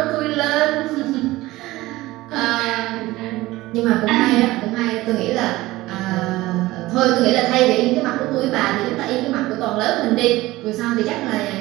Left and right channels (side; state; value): left; quieter; 18.4 dB